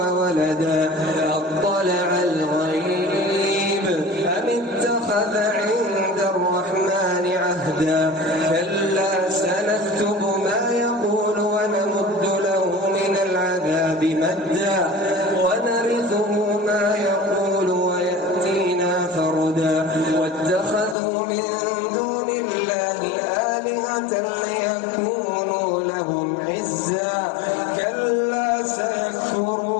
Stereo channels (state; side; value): drops out; right; at 21.0 s